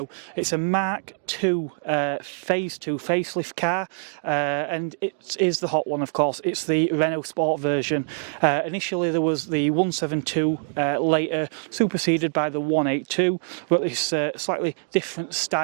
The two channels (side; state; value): left; silent; digital silence